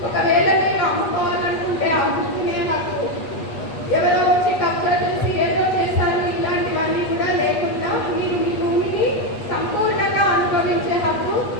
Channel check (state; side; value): late; right; 8.2 ms